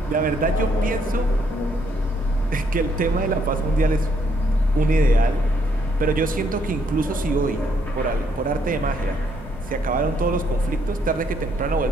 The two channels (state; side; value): normal; both; correlation 0.71